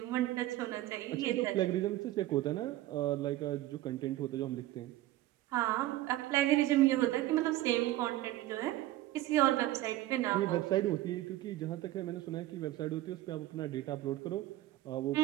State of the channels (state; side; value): quieter; left; 15.7 dB